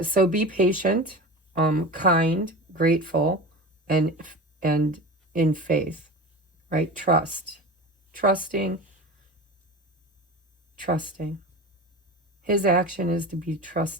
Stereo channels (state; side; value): normal; both; correlation 0.31